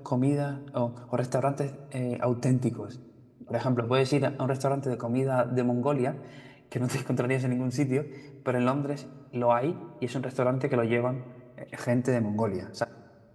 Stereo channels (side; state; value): both; identical; correlation 1.00